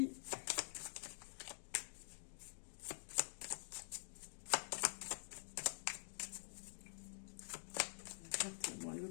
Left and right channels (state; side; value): silent; right; digital silence